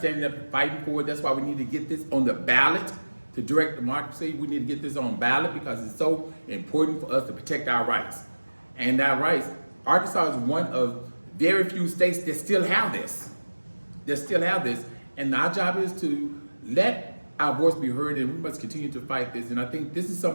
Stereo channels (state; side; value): inverted; both; correlation -1.00